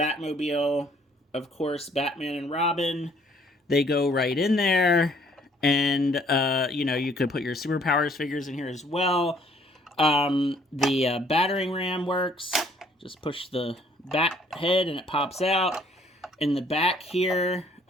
Of course, Batman and Robin, they go right in there. And, you know, you could put your Superpowers figures in here as well. The battering ram works. Just push the bat head and it pops out. In the back here,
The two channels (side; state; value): both; normal; correlation 0.62